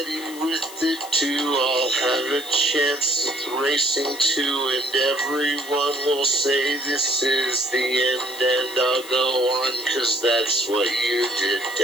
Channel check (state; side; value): noise; left; hiss, 15 dB below the sound